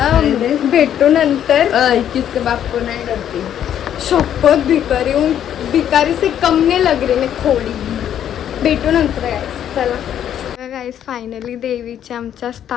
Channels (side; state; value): right; quieter; 10.1 dB